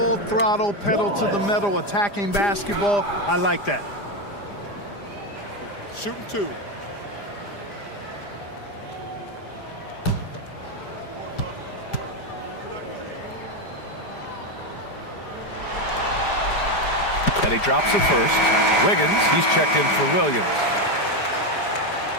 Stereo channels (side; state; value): right; late; 5.0 ms